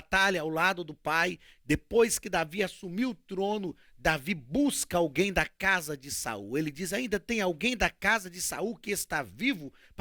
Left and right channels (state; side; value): identical; both; correlation 1.00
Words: ao lado do pai, depois que Davi assumiu o trono, Davi busca alguém da casa de Saul. Ele diz: ainda tem alguém da casa de Saul que está vivo